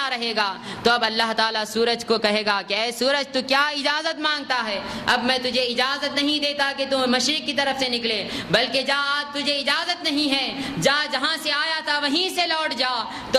رہے گا تو اب اللہ تعالیٰ سورج کو کہے گا کہ اے سورج تو کیا اجازت مانگتا ہے؟ اب میں تجھے اجازت نہیں دیتا کہ تو مشرق کی طرف سے نکلے، بلکہ جا آج تجھے اجازت نہیں ہے، جا جہاں سے آیا تھا وہیں سے لوٹ جا۔ تو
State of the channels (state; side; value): identical; both; correlation 1.00